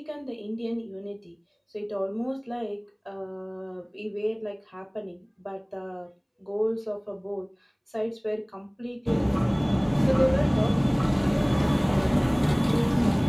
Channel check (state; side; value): identical; both; correlation 1.00